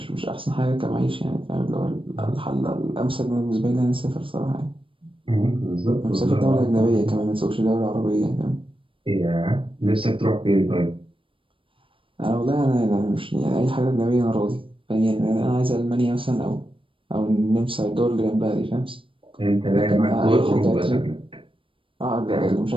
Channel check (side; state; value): left; late; 0.25 ms